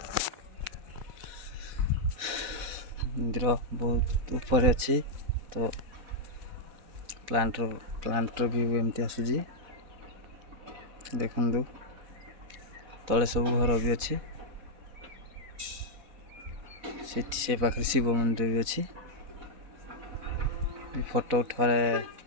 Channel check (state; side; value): late; left; 4.1 ms